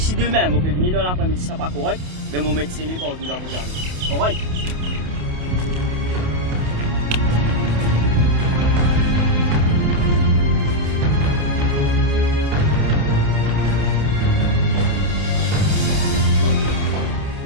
demain, vous pouvez venir dans l'après-midi, ça n'est pas correct, mais vous mettez scellé par tout dans vos jardins. Correct?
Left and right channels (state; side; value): late; left; 28 ms